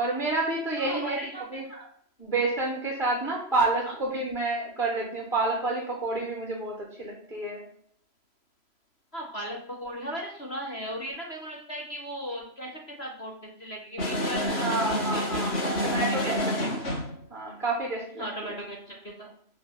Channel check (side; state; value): right; late; 3.0 ms